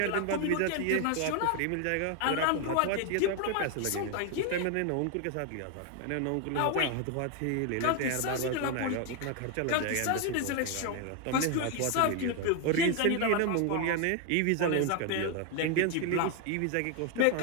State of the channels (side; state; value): both; different; correlation 0.01